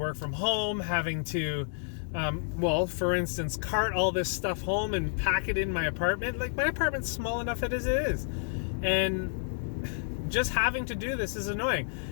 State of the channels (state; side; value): silent; right; digital silence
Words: from home, having to, well, for instance, cart all this stuff home and pack it in my apartment. Like, my apartment's small enough as it is. And just having to do this is annoying.